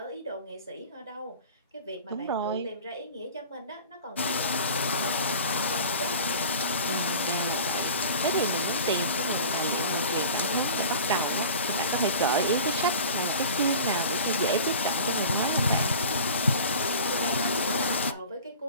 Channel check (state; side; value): inverted; both; correlation -0.38